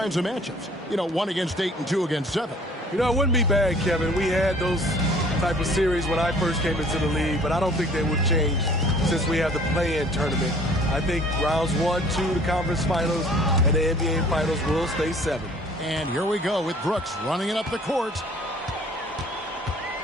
of matchups? You know, 1 against 8 and 2 against 7. You know, it wouldn't be bad, Kevin. We had those type of series when I first came into the league, but I don't think they would change since we have the play-in tournament. I think rounds 1, 2, the conference finals, and the NBA finals will stay 7. And here we go with Brooks running it up the court.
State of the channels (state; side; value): normal; both; correlation 0.53